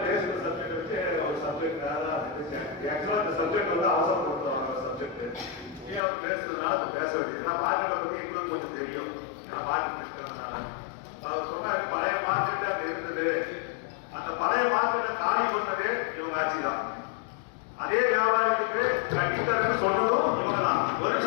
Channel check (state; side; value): drops out; right; at 6.0 s